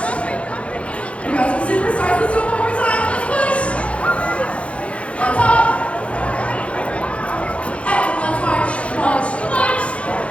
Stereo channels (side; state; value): right; late; 0.062 ms